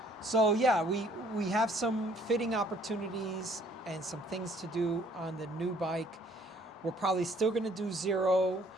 So yeah, we have some fitting opportunities and some things to do on the new bike. We're probably still going to do zero.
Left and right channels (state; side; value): normal; both; correlation 0.60